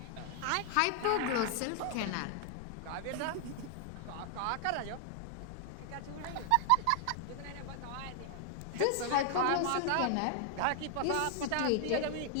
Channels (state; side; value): different; both; correlation 0.00